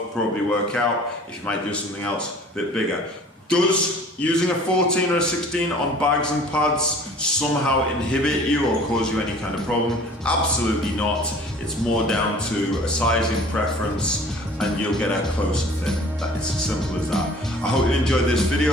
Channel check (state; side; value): normal; both; correlation 0.48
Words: probably work out. If you might do something else a bit bigger. Does using a 14 or a 16 on bags and pads somehow inhibit you or cause you any kind of problem? Absolutely not. It's more down to a sizing preference and you'll get a closer fit. It's as simple as that. I hope you enjoyed this